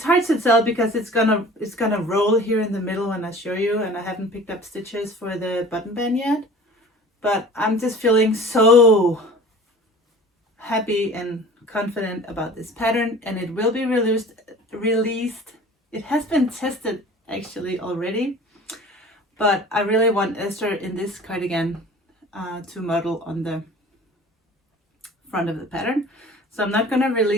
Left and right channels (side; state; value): both; normal; correlation 0.43